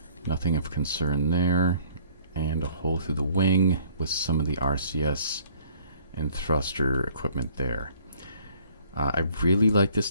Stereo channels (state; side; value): inverted; both; correlation -0.56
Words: Nothing of concern there. And a hole through the wing with some of the RCS and thruster equipment there. I really like this